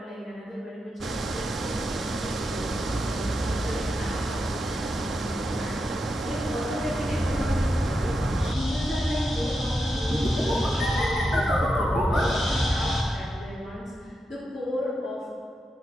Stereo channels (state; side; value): normal; both; correlation 0.86